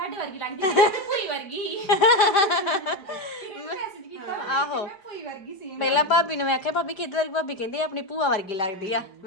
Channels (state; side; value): late; right; 5.0 ms